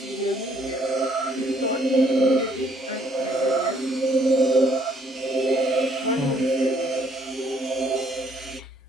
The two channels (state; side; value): normal; both; correlation 0.66